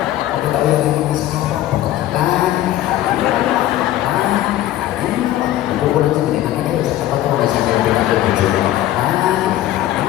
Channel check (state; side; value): quieter; right; 13.8 dB